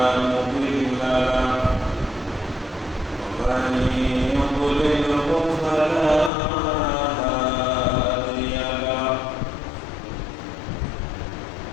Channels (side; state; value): right; drops out; at 6.3 s